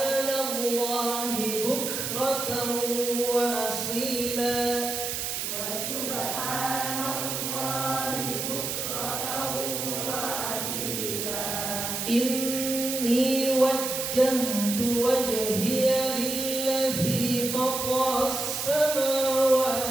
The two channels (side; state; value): right; noise; hiss, 3 dB below the sound